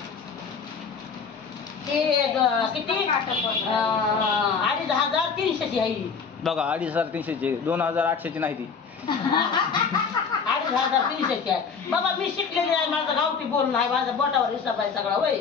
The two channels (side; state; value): right; quieter; 5.7 dB